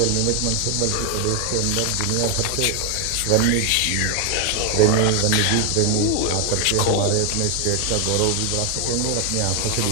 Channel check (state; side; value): different; both; correlation 0.01